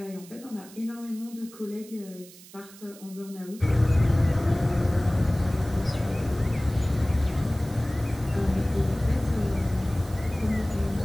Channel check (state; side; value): noise; right; hiss, 20 dB below the sound